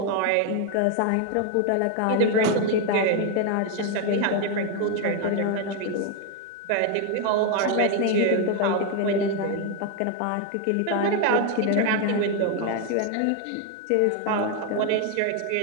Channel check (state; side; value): different; both; correlation 0.01